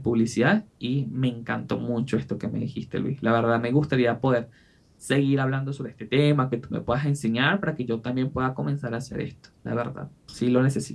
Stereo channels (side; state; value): both; identical; correlation 1.00